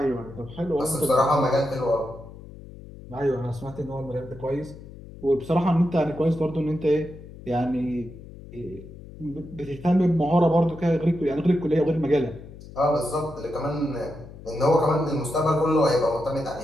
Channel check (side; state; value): left; noise; hum, 16 dB below the sound